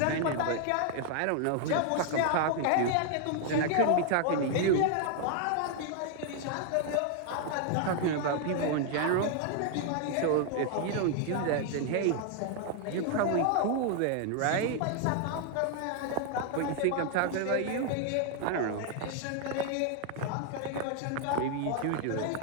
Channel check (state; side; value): different; both; correlation 0.00